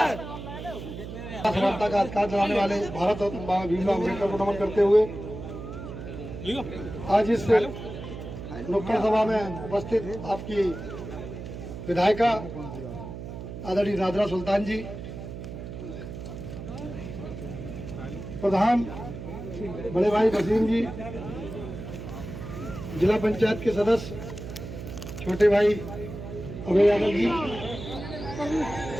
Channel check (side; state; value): right; noise; hum, 9 dB below the sound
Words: समानता का अधिकार जलाने वाले भारत रत्न बाबा भीमराव अम्बेडकर को नमन करते हुए आज इस नुक्कड़ सभा में उपस्थित आपकी विधायिका आदरणीय नादरा सुल्तान जी, प्रधान बड़े भाई वसीम जी, जिला पंचायत के सदस्य छोटे भाई अभय यादव जी,